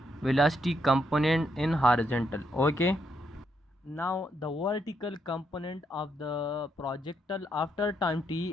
velocity component in horizontal. Okay. Now the vertical component of the projectile after time t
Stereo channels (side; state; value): both; normal; correlation 0.77